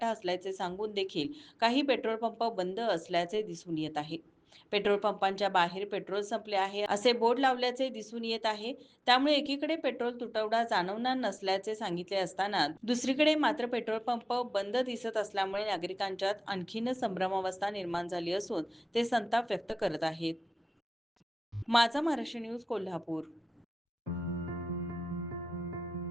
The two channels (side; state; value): both; normal; correlation 0.97